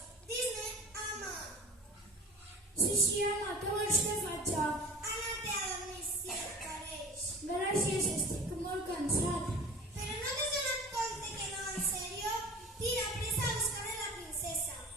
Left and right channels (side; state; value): both; normal; correlation 0.39